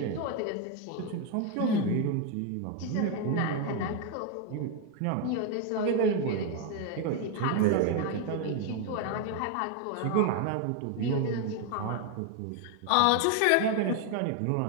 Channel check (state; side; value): different; both; correlation 0.01